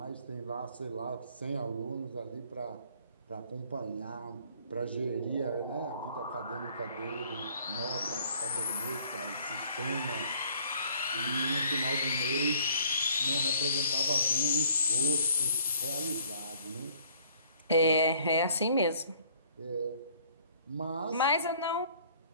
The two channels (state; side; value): inverted; both; correlation -0.57